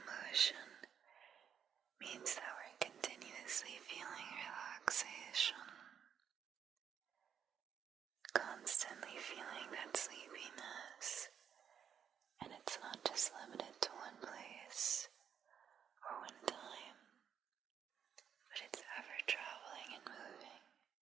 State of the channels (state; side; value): quieter; left; 8.1 dB